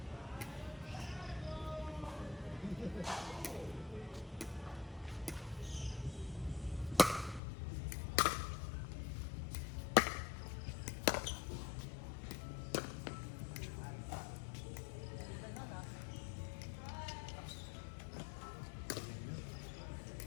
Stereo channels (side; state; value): right; drops out; at 7.4 s